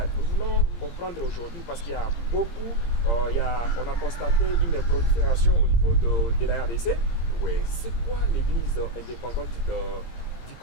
Nous voulons comprendre aujourd'hui parce qu'il y a beaucoup, on a constaté une prolifération au niveau de la RDC. Oui. C'est quoi l'église indépendante du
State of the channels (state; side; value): late; right; 17 ms